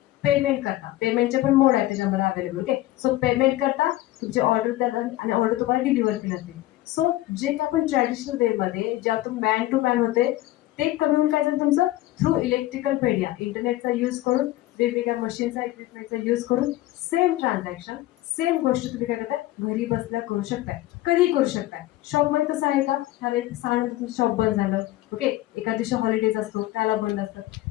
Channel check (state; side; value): quieter; right; 16.2 dB